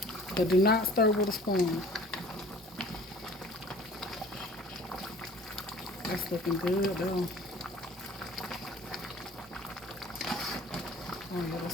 but do not stir with a spoon. That's looking good though. Oh yeah,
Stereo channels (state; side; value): normal; both; correlation 0.48